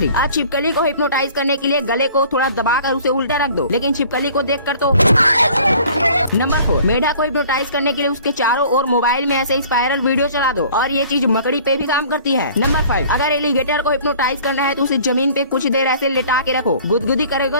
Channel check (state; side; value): inverted; both; correlation -0.51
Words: आज छिपकली को हिप्नोटाइज करने के लिए गले को थोड़ा दबाकर उसे उल्टा रख दो, लेकिन छिपकली को देख कर तो। नंबर 4, मेढा को हिप्नोटाइज करने के लिए उसके चारों ओर मोबाइल में ऐसे स्पाइरल वीडियो चला दो और ये चीज मकड़ी पे भी काम करती है। नंबर 5, अगर एलिगेटर को हिप्नोटाइज करना है तो उसे जमीन पे कुछ देर ऐसे लेटा के रखो, गुदगुदी करेगा